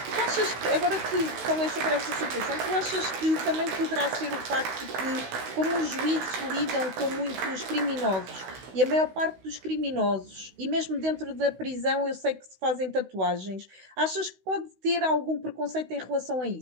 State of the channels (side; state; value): left; late; 16 ms